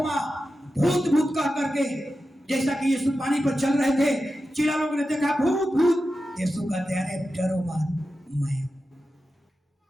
भूत भूत कह करके, जैसा कि यीशु पानी पर चल रहे थे, चिल्ला लोगों ने देखा भूत भूत, यीशु कहते अरे डरो मत, मैं।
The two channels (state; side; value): normal; both; correlation 0.92